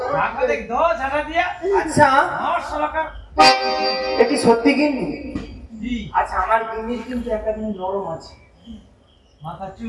টাকা দেখ দো টাকা দিয়া আচ্ছা 900 টাকা এটি সত্যি গিন্নি? জি আচ্ছা আমার গিন্নির কিন্তু একটা দিন নরম আছে মাথা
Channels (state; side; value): identical; both; correlation 1.00